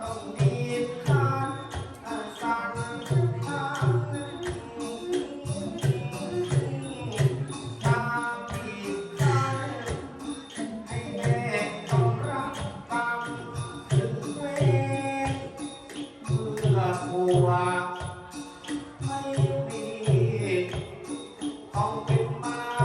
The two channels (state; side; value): identical; both; correlation 1.00